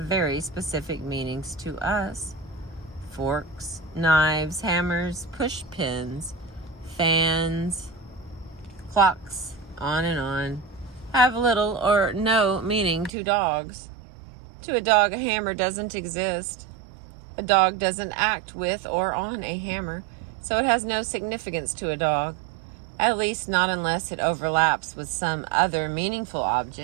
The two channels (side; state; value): left; drops out; at 13.1 s